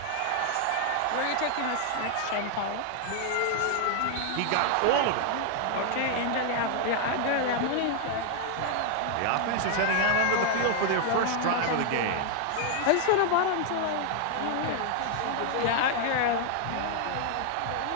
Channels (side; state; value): both; different; correlation 0.00